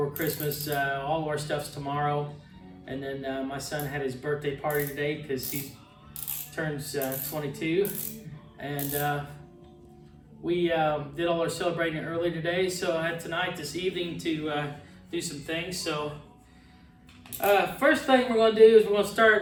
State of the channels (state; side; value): identical; both; correlation 1.00